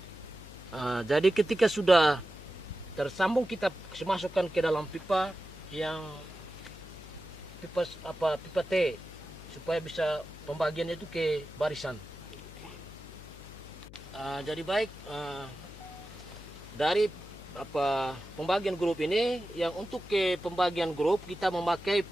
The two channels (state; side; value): noise; left; hum, 16 dB below the sound